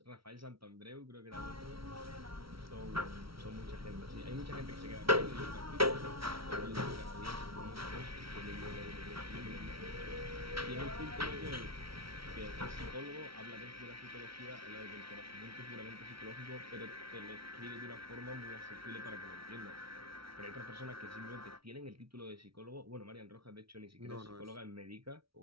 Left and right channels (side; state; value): left; late; 0.75 ms